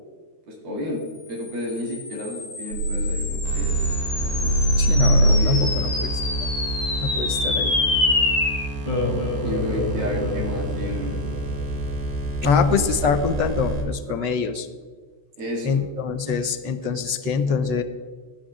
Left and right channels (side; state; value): left; late; 13 ms